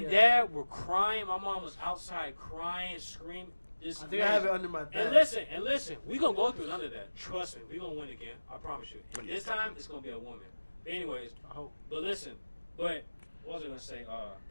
dad were crying. My mom was outside crying, screaming. I think I have it under my bed. And listen, we're going to go through none of that. Trust me, we're going to win again. I promise you. And this time, it's going to be a woman. But anyways, I hope. But listen, what was I going to say?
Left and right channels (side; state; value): both; inverted; correlation -1.00